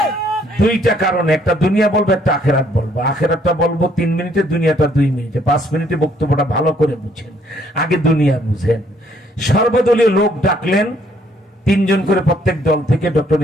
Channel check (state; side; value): normal; both; correlation 0.66